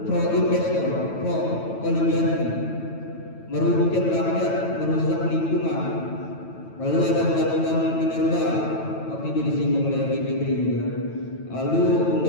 pro investor, pro oligarki, merugikan rakyat, merusak lingkungan. Lalu ada undang-undang minerba, waktu itu disinggung oleh BPT juga. Lalu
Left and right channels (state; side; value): late; right; 9.1 ms